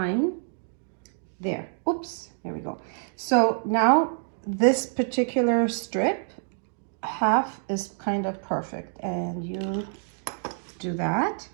There, oops, there we go. So now this particular strip, half is kind of perfect. And you do that,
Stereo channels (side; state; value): left; silent; 60 dB below the other